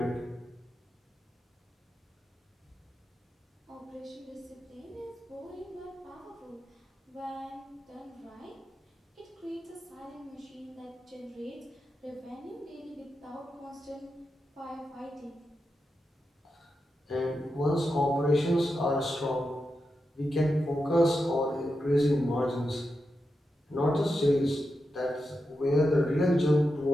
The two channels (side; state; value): both; normal; correlation 0.88